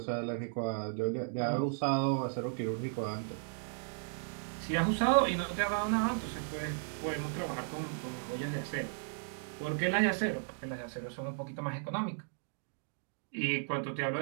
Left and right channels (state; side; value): silent; left; digital silence